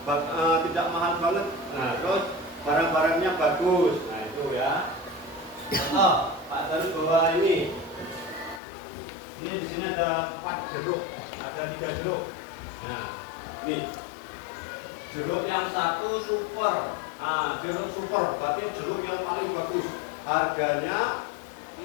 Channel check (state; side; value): drops out; right; at 8.6 s